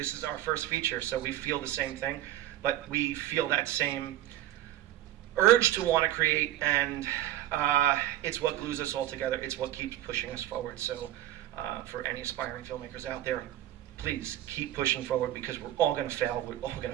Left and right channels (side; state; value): left; quieter; 13.5 dB